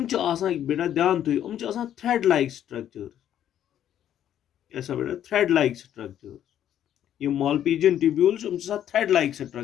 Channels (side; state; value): right; quieter; 10.7 dB